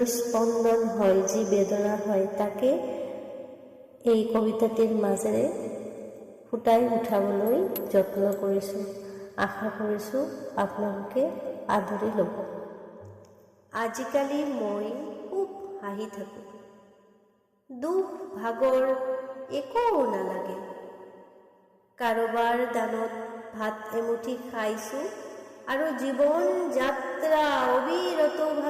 স্পন্দন হয়, যি বেদনা হয়, তাকে এই কবিতাটিৰ মাজেৰে ফুটাই উঠাবলৈ যত্ন কৰিছোঁ। আশা কৰিছোঁ আপোনালোকে আদৰি ল'ব। আজিকালি মই খুব হাঁহি থাকোঁ, দুখ ভাগৰ একো নালাগে। কাৰোবাৰ দানত ভাত এমুঠি খাইছোঁ আৰু জীৱন যাত্ৰা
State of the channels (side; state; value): both; identical; correlation 1.00